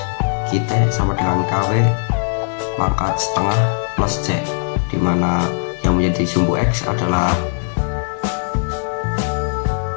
Q_T sama dengan KW pangkat setengah plus C, di mana yang menjadi sumbu X adalah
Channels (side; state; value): right; silent; digital silence